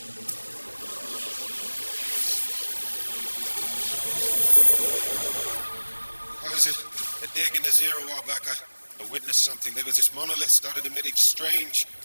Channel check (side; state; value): both; inverted; correlation -1.00